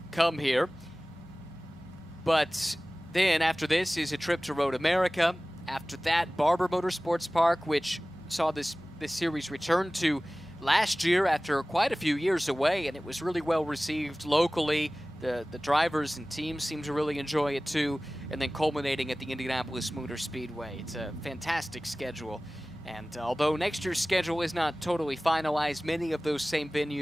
come here. But then after this is a trip to Road America. After that, Barber Motorsports Park, which saw this series return to last year after quite a few years away, and it was really well received locally. The drivers and teams seem to really enjoy it too, and then culminating at the Indianapolis Motor Speedway. It's a fantastic schedule, and although next year's schedule is not totally finalized, many of those same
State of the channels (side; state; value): both; normal; correlation 0.98